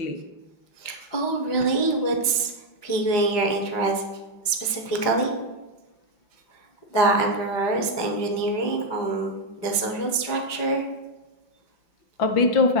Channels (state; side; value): late; right; 5.0 ms